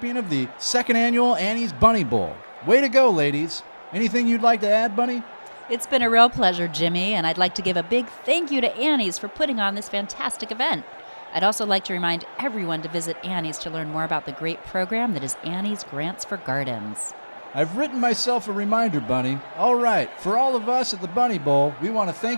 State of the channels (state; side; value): inverted; both; correlation -1.00